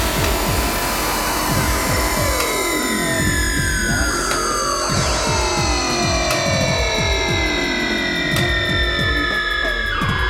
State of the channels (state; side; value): identical; both; correlation 1.00